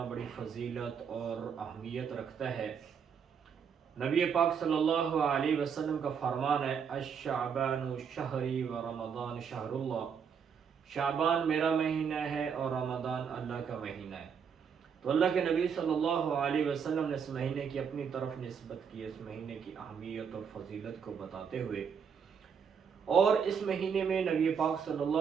بڑی فضیلت اور اہمیت رکھتا ہے۔ نبی پاک صلی اللہ علیہ وسلم کا فرمان ہے، الشعبان شہری و رمضان شہر اللہ۔ شعبان میرا مہینہ ہے اور رمضان اللہ کا مہینہ ہے۔ تو اللہ کے نبی صلی اللہ علیہ وسلم نے اس مہینے کی اپنی طرف نسبت کی، اس مہینے کی اہمیت اور فضیلت کو بتاتے ہوئے، اور اس مہینے میں نبی پاک صلی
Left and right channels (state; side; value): quieter; left; 6.9 dB